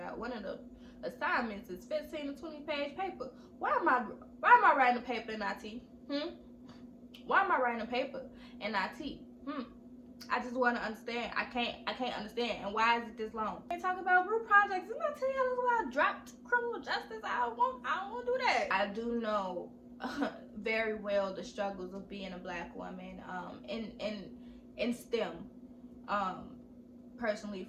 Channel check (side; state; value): both; identical; correlation 1.00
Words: one of the assignments is 15 to 20-page paper. Why am I writing a paper in IT? Why am I writing a paper in IT? I just want to understand. I can't understand. And why is it this long? They talk about group projects. Didn't I tell y'all about dropped criminal justice? I don't want to do that. I do know very well the struggles of being a Black woman in STEM. personally